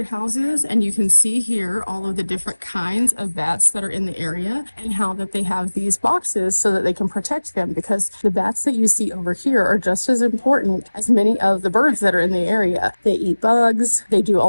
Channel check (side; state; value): both; inverted; correlation -1.00